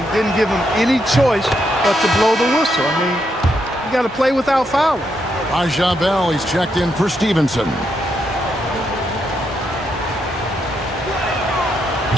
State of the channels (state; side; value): normal; both; correlation 0.79